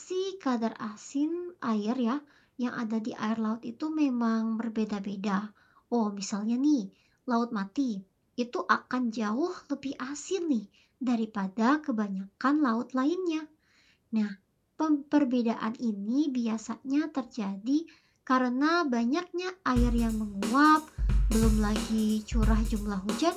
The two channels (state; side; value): identical; both; correlation 1.00